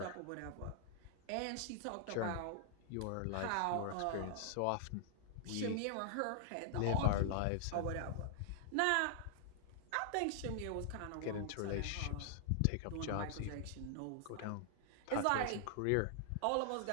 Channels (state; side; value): different; both; correlation 0.00